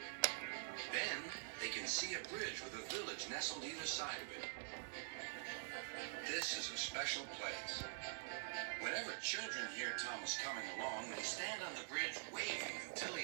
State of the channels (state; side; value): silent; left; digital silence